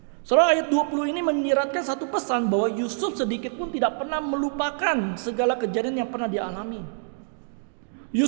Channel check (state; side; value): silent; left; digital silence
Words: Saudara, ayat 20 ini menyiratkan satu pesan bahwa Yusuf sedikit pun tidak pernah melupakan segala kejadian yang pernah dialami.